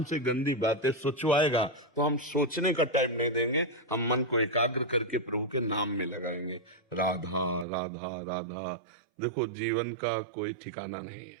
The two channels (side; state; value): left; drops out; at 7.7 s